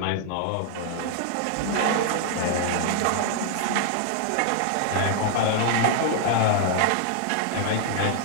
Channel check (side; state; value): both; different; correlation 0.00